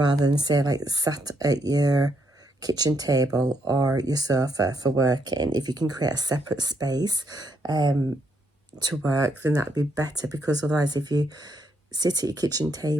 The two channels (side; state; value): both; normal; correlation 0.75